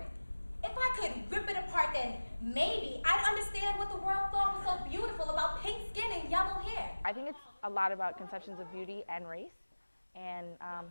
If I could rip it apart, then maybe I'd understand what the world thought was so beautiful about pink skin and yellow hair. I think it's a lot about conceptions of beauty and race. And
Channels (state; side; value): inverted; both; correlation -1.00